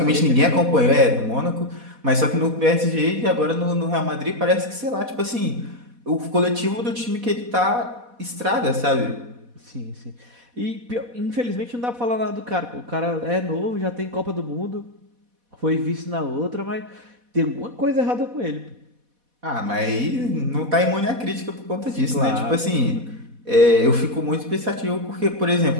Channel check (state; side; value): late; left; 4.1 ms